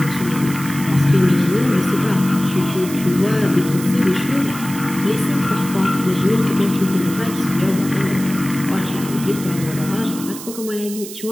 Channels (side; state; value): right; noise; hiss, 12 dB below the sound